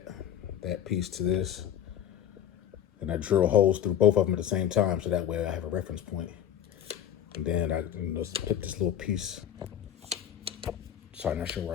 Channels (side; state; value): right; quieter; 10.1 dB